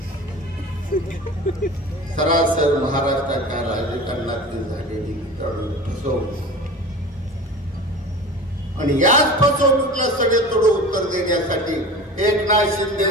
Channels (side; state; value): both; normal; correlation 0.36